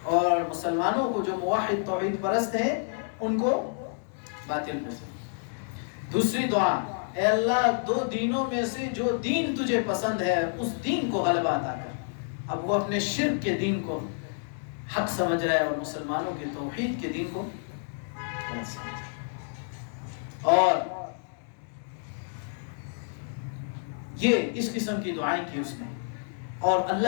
اور مسلمانوں کو جو موحد توحید پرست ہیں ان کو باطل پہ سمجھ۔ دوسری دعا، اے اللہ 2 دینوں میں سے جو دین تجھے پسند ہے اس دین کو غلبہ عطا کر۔ اب وہ اپنے شرک کے دین کو حق سمجھ رہا ہے اور مسلمانوں کے توحید کے دین کو غلط سمجھ رہا ہے۔ اور یہ اس قسم کی دعائیں کی اس نے، اور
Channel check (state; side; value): silent; right; digital silence